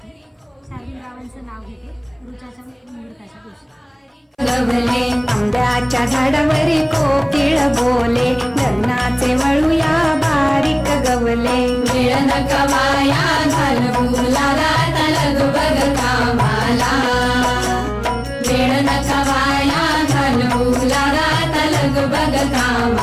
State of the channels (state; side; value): identical; both; correlation 1.00